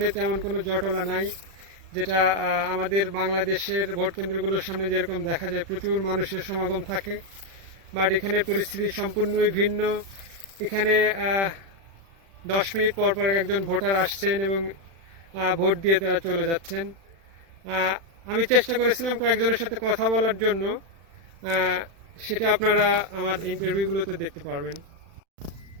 তেমন কোনো জটলা নাই, যেটা আমাদের বাংলাদেশের ভোট কেন্দ্রগুলোর সামনে যেরকম দেখা যায় প্রচুর মানুষের সমাগম থাকে। বাট এখানের পরিস্থিতি সম্পূর্ণই ভিন্ন। এখানে 10 মিনিট পর পর একজন ভোটার আসছেন এবং ভোট দিয়ে তারা চলে যাচ্ছেন। আমি চেষ্টা করেছিলাম কয়েকজনের সাথে কথা বলার জন্য, সেটা আপনারা আমার ইন্টারভিউগুলোতে দেখতে পারবেন।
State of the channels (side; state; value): left; late; 36 ms